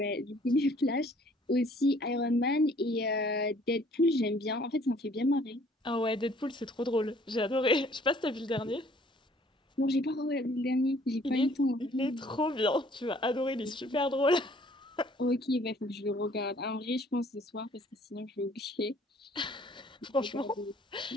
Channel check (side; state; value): both; normal; correlation 0.58